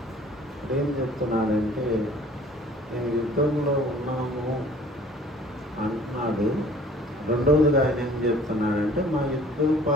ఏం చెప్తున్నాడంటే, మేము యుద్ధంలో ఉన్నాము అంటున్నాడు. రెండవదిగా ఆయన ఏం చెప్తున్నాడంటే, మా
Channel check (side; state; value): both; normal; correlation 0.52